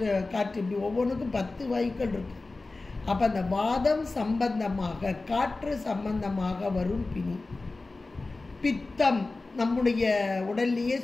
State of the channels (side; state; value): right; quieter; 3.4 dB